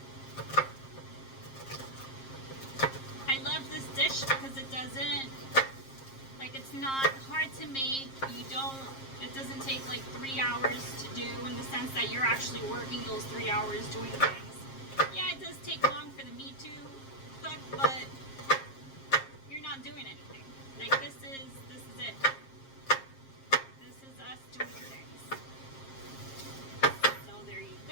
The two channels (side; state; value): right; late; 7.5 ms